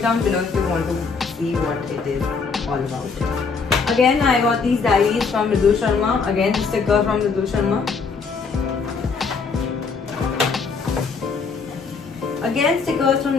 down below if you want to see what it is all about. Again, I got these diaries from Rudul Sharma. Again, the sticker from Rudul Sharma. Again, stickers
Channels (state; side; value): quieter; right; 5.0 dB